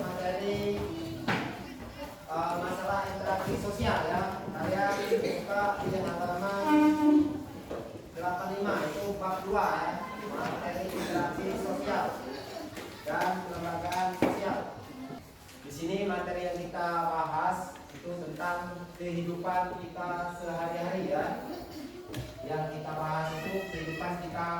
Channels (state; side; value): identical; both; correlation 1.00